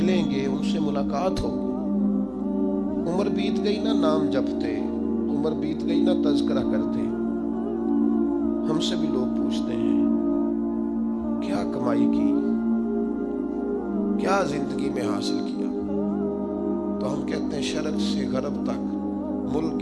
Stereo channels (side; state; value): both; identical; correlation 1.00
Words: گے ان سے ملاقات ہوگی۔ عمر بیت گئی نا نام جپتے، عمر بیت گئی نا تذکرہ کرتے، ہم سے بھی لوگ پوچھتے ہیں کیا کمائی کی، کیا زندگی میں حاصل کیا، تو ہم کہتے ہیں شرق سے غرب تک، ملک